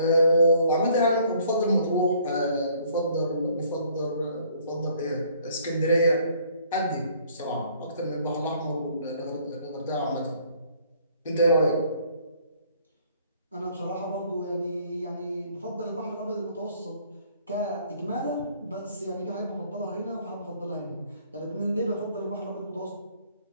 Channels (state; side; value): inverted; both; correlation -0.60